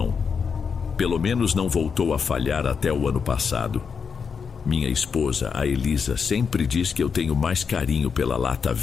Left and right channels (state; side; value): quieter; right; 6.1 dB